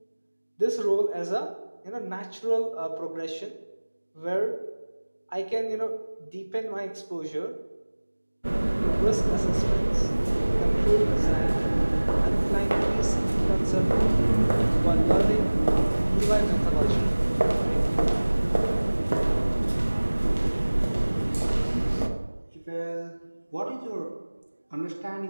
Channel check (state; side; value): inverted; both; correlation -1.00